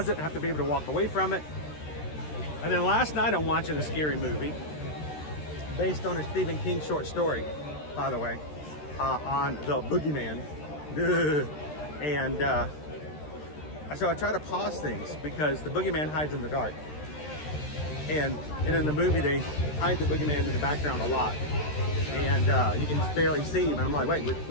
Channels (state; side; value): late; right; 13 ms